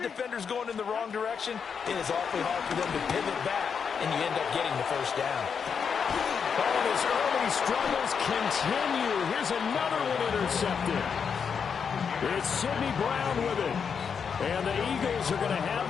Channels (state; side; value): quieter; right; 6.5 dB